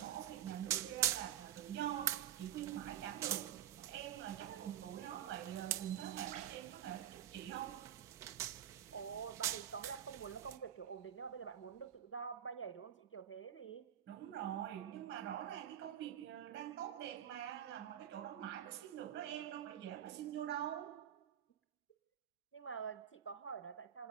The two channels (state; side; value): quieter; left; 10.5 dB